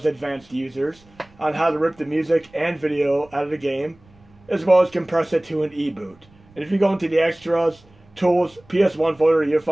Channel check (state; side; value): noise; right; rumble, 29 dB below the sound